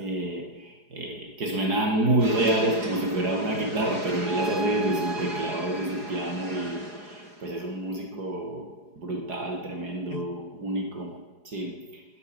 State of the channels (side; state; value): left; late; 4.8 ms